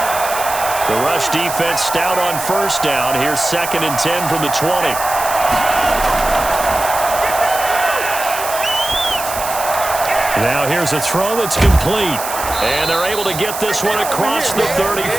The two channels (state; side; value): noise; right; hiss, 8 dB below the sound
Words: The rush defense stout on first down. Here's 2nd and 10 from the 20. Now here's a throw that's complete. And they're able to get this one across the